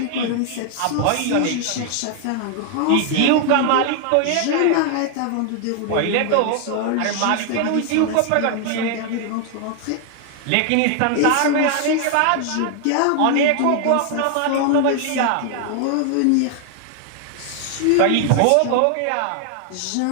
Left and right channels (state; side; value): different; both; correlation 0.00